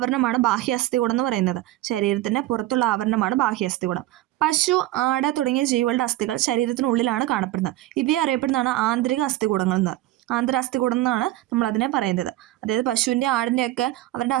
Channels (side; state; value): left; quieter; 15.7 dB